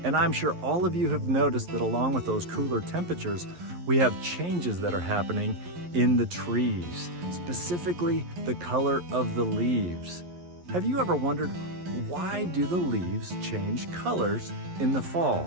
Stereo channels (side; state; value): left; late; 11 ms